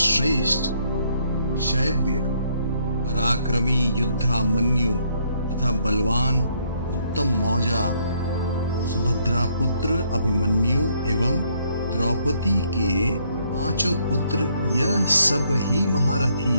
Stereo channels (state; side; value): inverted; both; correlation -0.69